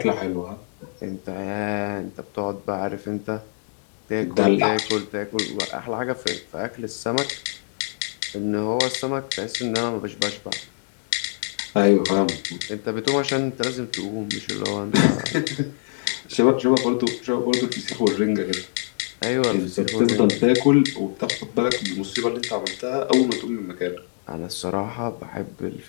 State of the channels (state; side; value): silent; right; digital silence